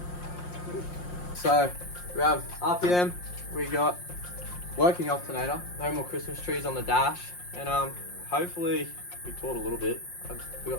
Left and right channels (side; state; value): right; late; 5.6 ms